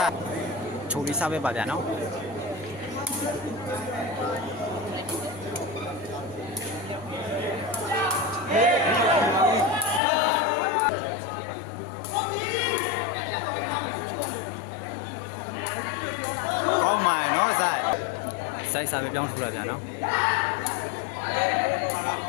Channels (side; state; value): right; drops out; at 10.0 s